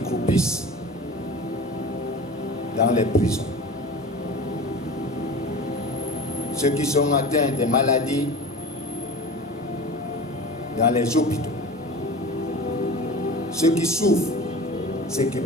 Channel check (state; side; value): normal; both; correlation 0.35